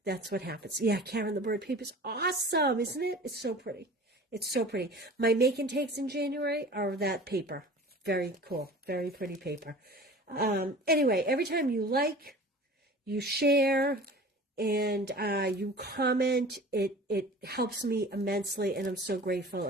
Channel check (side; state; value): both; normal; correlation 0.41